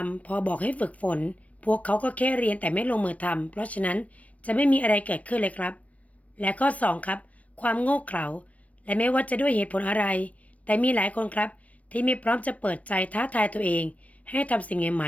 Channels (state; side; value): late; right; 0.067 ms